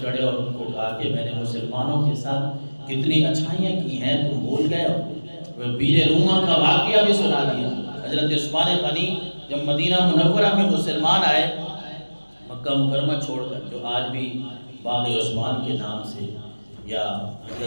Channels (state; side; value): inverted; both; correlation -1.00